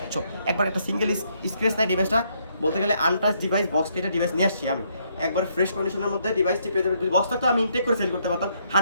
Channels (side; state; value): both; inverted; correlation -0.73